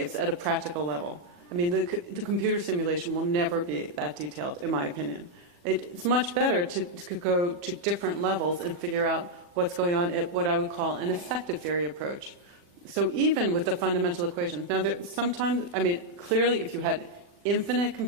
at a practical level. I mean, the computer simulation will never be that detailed, in my opinion. It's much better to go to different levels and figure out what's going on at what I would call an effective theory approach. So even with the fundamental equations, now sometimes, I mean, clearly if you had infinite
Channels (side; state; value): left; late; 40 ms